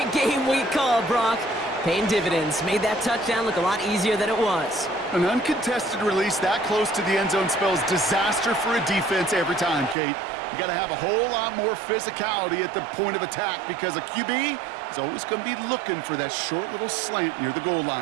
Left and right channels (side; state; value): left; drops out; at 10.0 s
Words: game we call, Brock. Paying dividends. Made that touchdown look a lot easier than it was. An uncontested release that close to the end zone spells disaster for a defense every time, Kate. You got to have a whole lot more physicality at the point of attack because a QB is always going to be looking for that short little slant near the goal